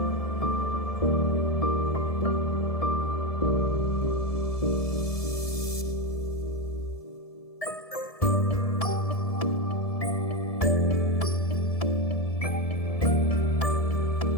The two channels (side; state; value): right; late; 1.7 ms